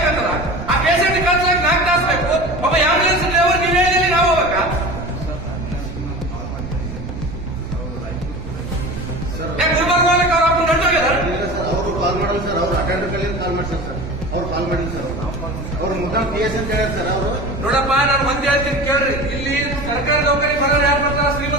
ಆ ಪೇಷಂಟ್ ಕಳ್ಸಕ್ 4 ತಾಸು ಬೇಕು. ಒಬ್ಬ ಆಂಬುಲೆನ್ಸ್ ಡ್ರೈವರ್ ನೀವು ಹೇಳಿ ನಾವು ಹೋಗ್ಬೇಕಾ? ಗುಲ್ಬರ್ಗ ಅವ್ರ ಅಪ್ಪ ನಡ್ದೋಗ್ಯದ ಅವರು ಕಾಲ್ ಮಾಡಲ್ಲ ಸರ್. ಅವ್ರು ಅಟೆಂಡರ್ ಕಲ್ಲಿ ಕಾಲ್ ಮಾಡ್ತಾರೆ ಸರ್. ಅವ್ರು ಕಾಲ್ ಮಾಡಿಲ್ಲ ಸರ್. ಅವ್ರು ಮುದ್ದಾಂ PS ಅಂತ ಹೇಳ್ಯಾರ ಸರ್. ಅವರು ನೋಡಪ್ಪ, ನಾನು ಒಂದ್ ಹೇಳ್ತೀನಿ ಕೇಳ್ರಿ. ಇಲ್ಲಿ ಸರ್ಕಾರ ದವಾಖಾನೆ ಬರೋರು ಯಾರು ಬರ್ತಾರ?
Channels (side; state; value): right; noise; rumble, 11 dB below the sound